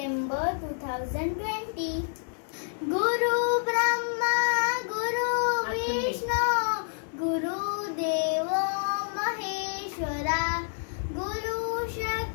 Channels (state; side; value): silent; right; digital silence